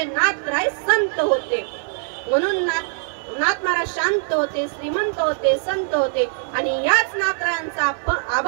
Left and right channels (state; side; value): silent; left; 57 dB below the other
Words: नाथराय संत होते. म्हणून नाथ महाराज शांत होते, श्रीमंत होते, संत होते. आणि याच नाथरायांचा